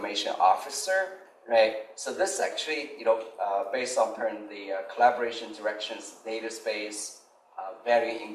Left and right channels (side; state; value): both; identical; correlation 1.00